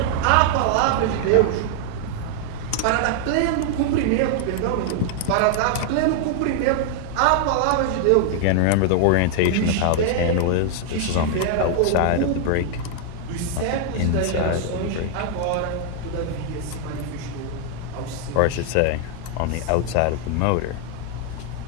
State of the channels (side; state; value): both; different; correlation 0.00